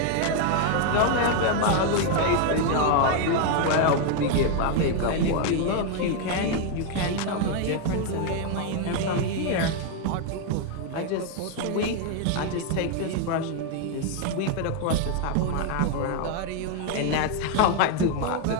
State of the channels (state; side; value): different; both; correlation 0.01